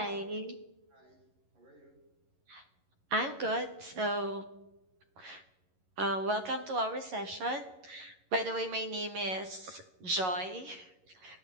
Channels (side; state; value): left; late; 11 ms